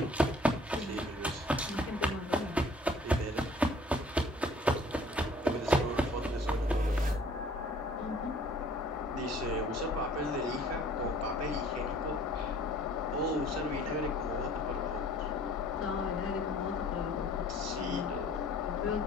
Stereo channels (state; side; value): normal; both; correlation 0.53